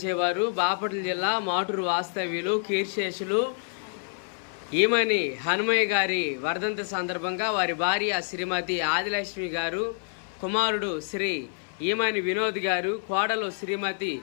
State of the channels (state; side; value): silent; right; 56 dB below the other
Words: చేవారు బాపట్ల జిల్లా మాటూరు వాస్తవ్యులు కీర్శేషులు ఈమని హనుమయ్య గారి వర్ధంతి సందర్భంగా వారి భార్య శ్రీమతి ఆదిలక్ష్మి గారు, కుమారుడు శ్రీ ఈమని వినోద్ గారు, కోడలు శ్రీమతి